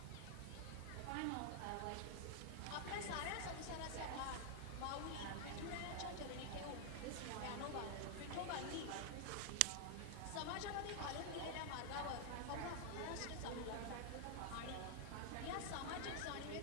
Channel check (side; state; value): both; different; correlation 0.00